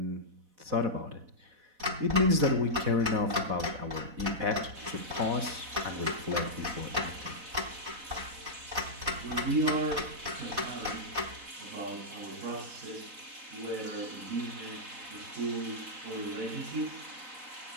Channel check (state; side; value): late; left; 4.1 ms